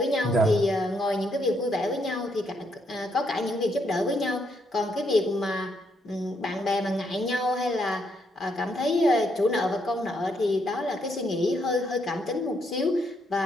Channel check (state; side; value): normal; both; correlation 0.75